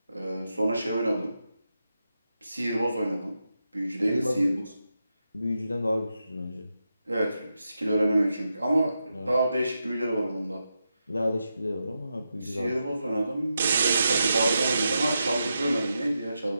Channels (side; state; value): both; inverted; correlation -0.87